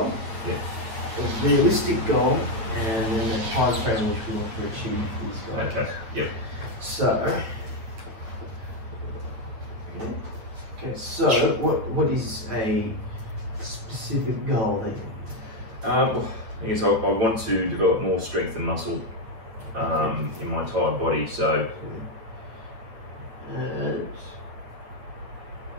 a realistic goal, and then the time frame in which we want to achieve these goals. Okay, yep. So, what is a specific goal that you I guess I want to develop more strength and muscle in my entire body, so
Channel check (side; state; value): left; late; 9.2 ms